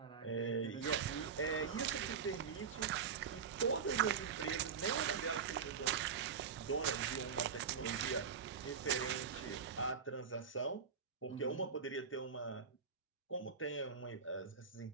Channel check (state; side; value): quieter; left; 6.4 dB